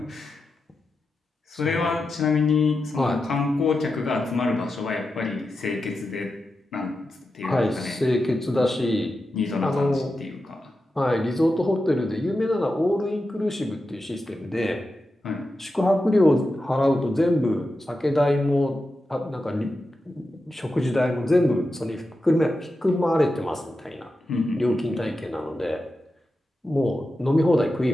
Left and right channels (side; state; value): both; normal; correlation 0.90